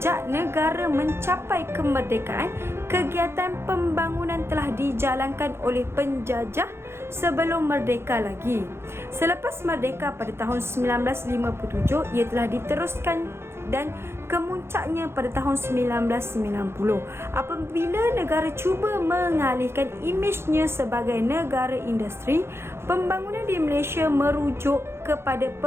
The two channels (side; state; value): left; late; 0.12 ms